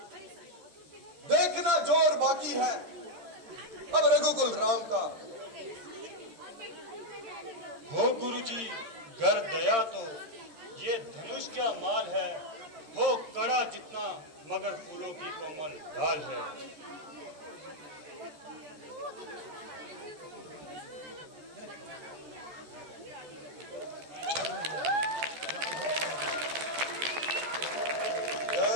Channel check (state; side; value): late; left; 13 ms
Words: देखना जोर बाकी है अब रघुकुल राम का। हो गुरु जी घर दया तो ये धनुष क्या माल है, हो कड़ा जितना मगर फूलों की कोमल डाल है।